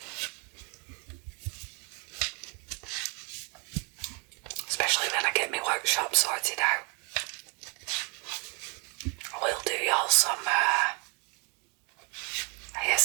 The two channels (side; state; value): left; quieter; 34.9 dB